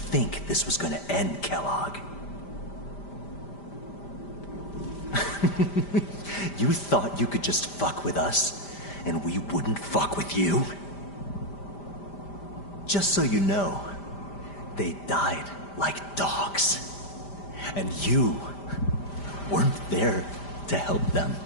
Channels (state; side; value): late; right; 5.0 ms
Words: this was gonna end, Kellogg? You thought you could just fuck with us, and we wouldn't fuck with you? Just so you know, they died like dogs. And you weren't there to help them.